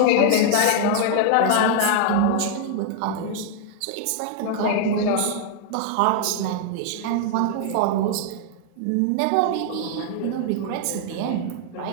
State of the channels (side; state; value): both; different; correlation 0.00